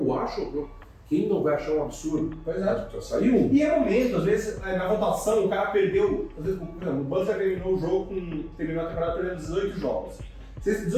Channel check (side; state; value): both; identical; correlation 1.00